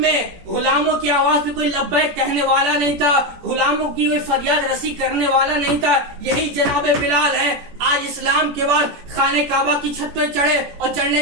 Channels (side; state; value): left; late; 17 ms